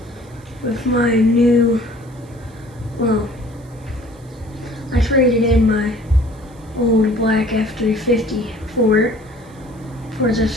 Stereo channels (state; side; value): noise; right; hiss, 29 dB below the sound